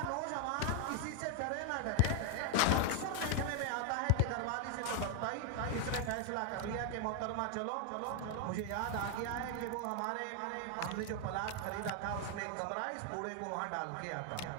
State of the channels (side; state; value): both; different; correlation 0.01